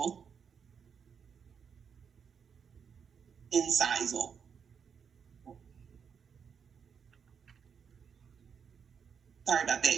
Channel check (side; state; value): left; quieter; 6.8 dB